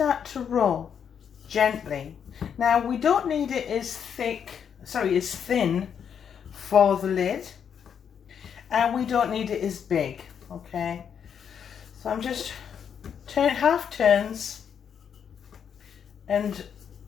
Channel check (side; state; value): right; quieter; 7.8 dB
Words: to roll gently. Now we don't need it as thin for the lid. And we don't need it as big, okay? So I'm just half turns and